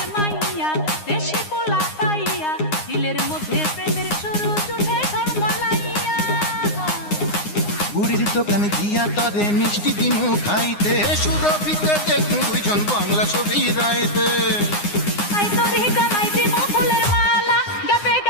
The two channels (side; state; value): right; late; 9.7 ms